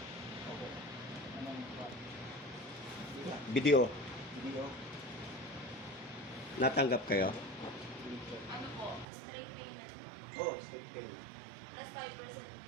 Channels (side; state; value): left; drops out; at 9.1 s